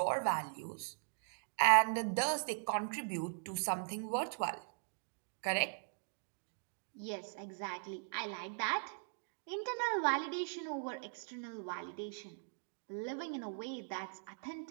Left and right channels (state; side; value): silent; left; digital silence